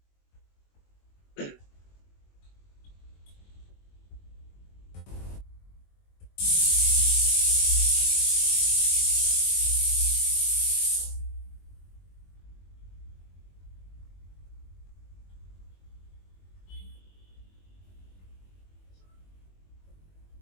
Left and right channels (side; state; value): right; late; 21 ms